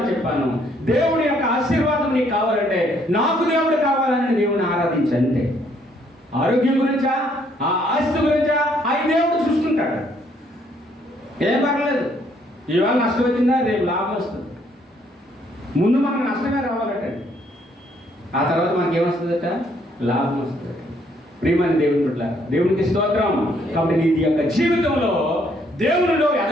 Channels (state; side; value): normal; both; correlation 0.67